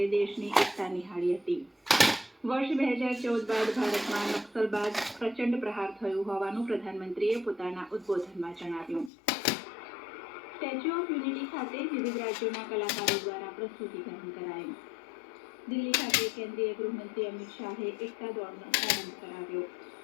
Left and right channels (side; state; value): right; drops out; at 9.1 s